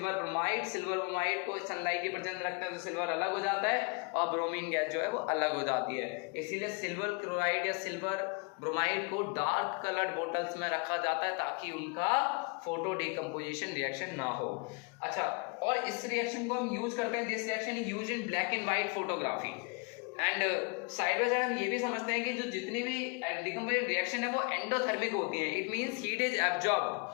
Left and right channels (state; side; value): quieter; right; 32.2 dB